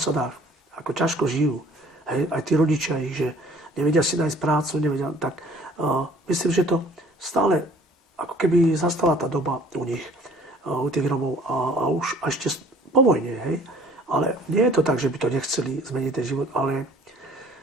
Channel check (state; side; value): normal; both; correlation 0.53